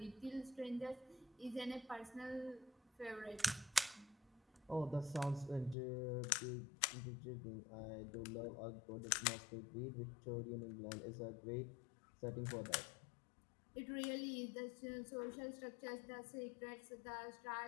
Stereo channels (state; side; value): drops out; right; at 5.8 s